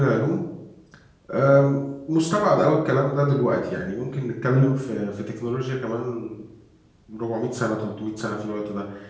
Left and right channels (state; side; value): identical; both; correlation 1.00